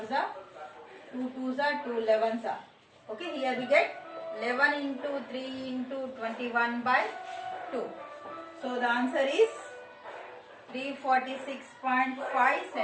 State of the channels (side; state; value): both; identical; correlation 1.00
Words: are 2 twos are 2 11s are. Okay, here we get 11 into 3 into 21 by 2. So the answer is 346.5